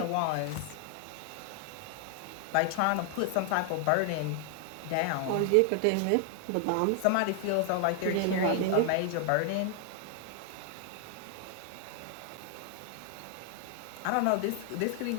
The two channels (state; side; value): different; both; correlation 0.00